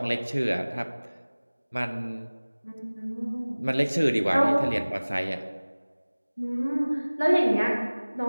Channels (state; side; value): inverted; both; correlation -1.00